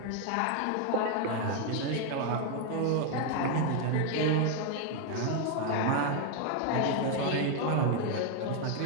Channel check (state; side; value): different; both; correlation 0.01